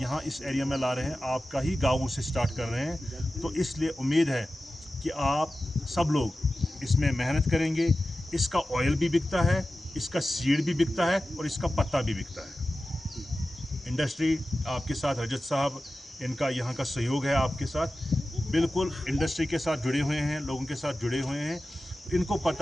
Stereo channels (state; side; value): normal; both; correlation 0.94